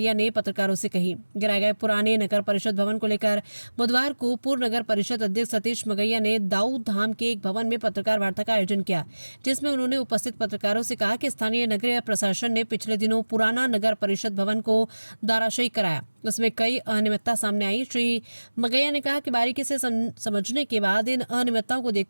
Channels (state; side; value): inverted; both; correlation -1.00